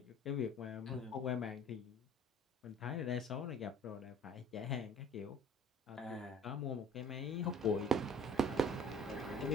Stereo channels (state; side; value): normal; both; correlation 0.49